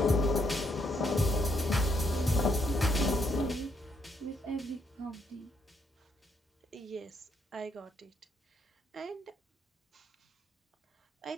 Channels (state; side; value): normal; both; correlation 0.74